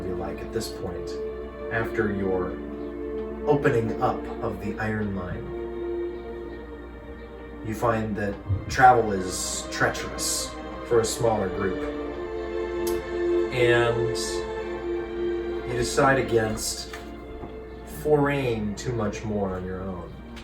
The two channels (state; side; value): identical; both; correlation 1.00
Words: be like at this point after your opening up of the iron mine. You find that travel is treacherous for a smaller group, and you decide against foraying too much more on your own.